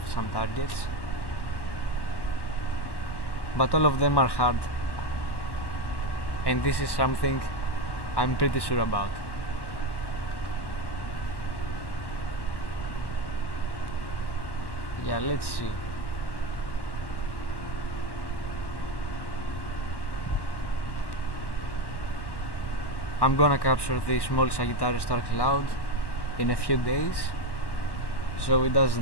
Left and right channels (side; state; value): right; late; 1.1 ms